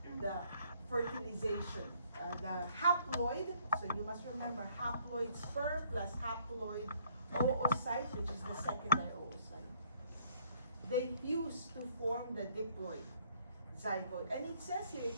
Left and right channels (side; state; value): both; inverted; correlation -0.65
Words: The fertilization. The haploid, so you must remember haploid sperm plus haploid oocyte, which is the secondary oocyte. They fuse to form the diploid zygote. And it says here